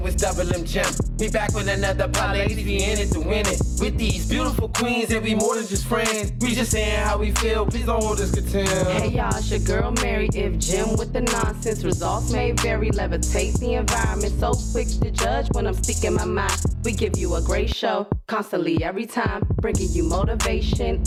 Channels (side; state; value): both; identical; correlation 1.00